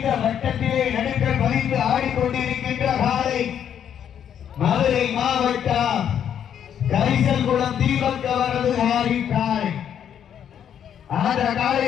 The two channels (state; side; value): quieter; right; 9.1 dB